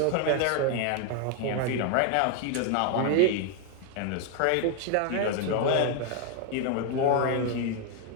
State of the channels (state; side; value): different; both; correlation 0.01